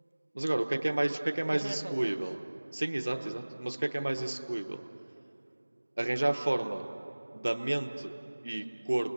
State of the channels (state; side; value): inverted; both; correlation -1.00